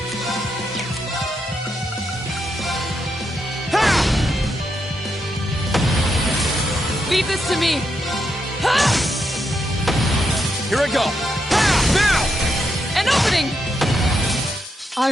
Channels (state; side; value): normal; both; correlation 0.82